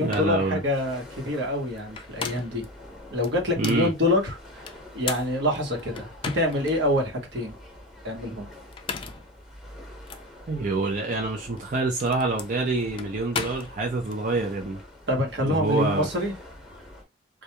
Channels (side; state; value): both; normal; correlation 0.27